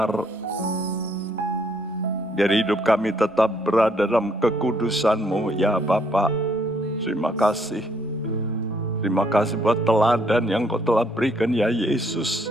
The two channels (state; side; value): normal; both; correlation 0.68